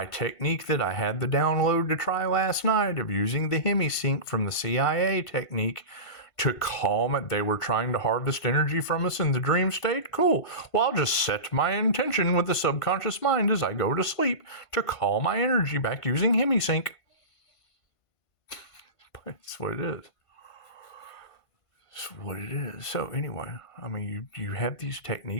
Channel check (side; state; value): right; late; 1.5 ms